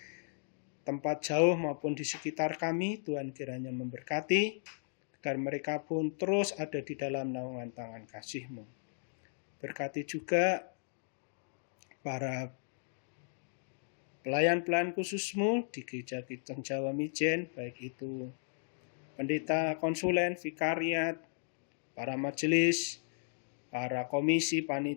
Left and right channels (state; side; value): silent; right; digital silence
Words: tempat jauh maupun di sekitar kami. Tuhan kiranya memberkati, agar mereka pun terus ada di dalam naungan tangan kasih-Mu. Berkati juga para pelayan-pelayan khusus-Mu di Gereja Kristen Jawa Mijen, baik itu pendeta, konsulen, vikariat, para majelis, para komisi,